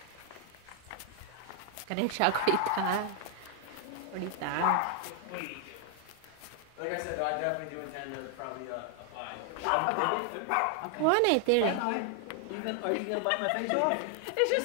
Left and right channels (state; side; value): different; both; correlation 0.00